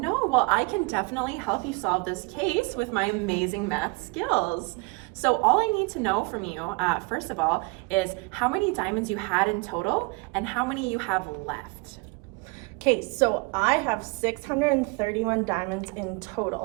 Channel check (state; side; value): quieter; left; 27.3 dB